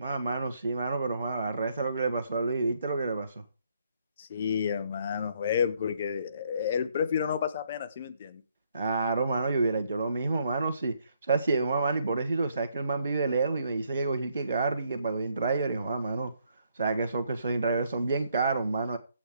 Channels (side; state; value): both; inverted; correlation -0.71